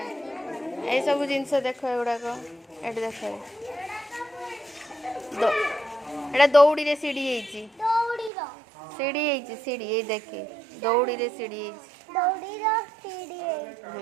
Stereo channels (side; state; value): left; drops out; at 8.3 s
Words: ए सब जिनस देख एगुड़ाक ये देख एटा दौड़ी रे सीढ़ी सीढ़ी सीढ़ी ये देखी दौड़ी रे सीढ़ी